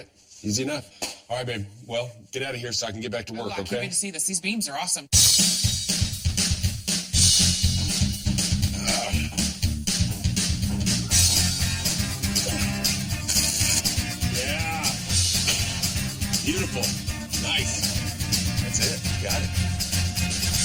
Easy enough. All right, babe. Well, get out of here so I can get back to work, I can't okay? wait to see this. These beams are awesome. Yeah. Beautiful. Nice. That's it. Got it.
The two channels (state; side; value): identical; both; correlation 1.00